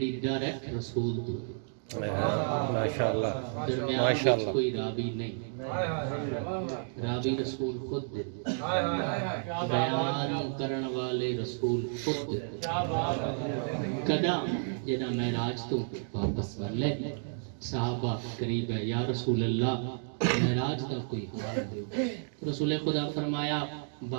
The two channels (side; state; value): left; silent; digital silence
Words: ڈائریکٹ رسول تو ماشاءاللہ درمیان کوئی راوی نہیں راوی رسول خود دیتے بیان کرن والے رسول خود دیتے کدا جنا معراج تو واپس ورلے صحابہ قریب ہے یا رسول اللہ معراج دا کوئی حال دیو رسول خدا فرمایا